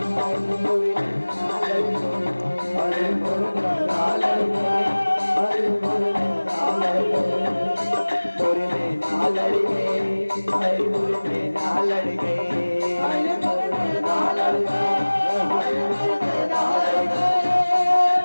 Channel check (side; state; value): both; inverted; correlation -1.00